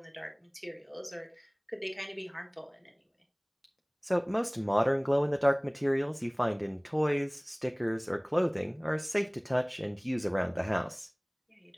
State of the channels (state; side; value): identical; both; correlation 1.00